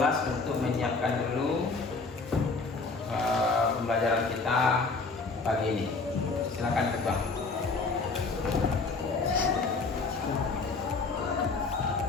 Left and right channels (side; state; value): right; quieter; 4.0 dB